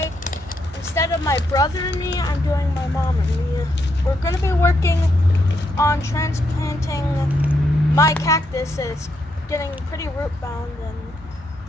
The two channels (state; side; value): normal; both; correlation 0.78